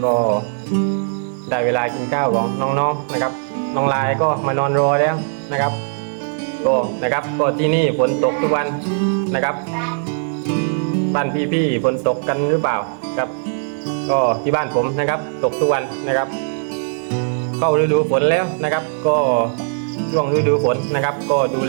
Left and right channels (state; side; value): silent; left; digital silence